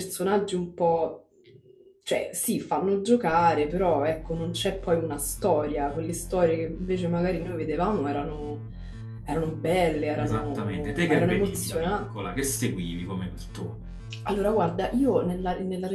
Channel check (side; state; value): both; identical; correlation 1.00